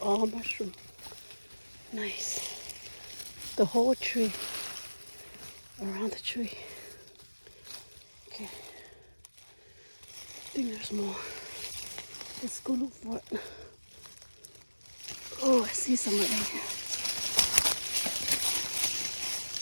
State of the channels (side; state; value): both; inverted; correlation -1.00